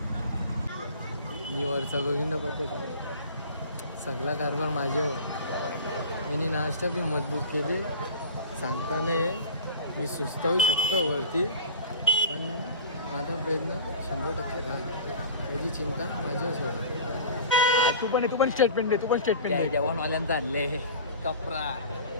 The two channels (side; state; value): both; inverted; correlation -0.38